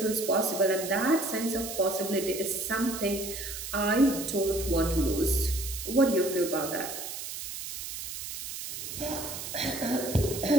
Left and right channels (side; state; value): right; noise; hiss, 7 dB below the sound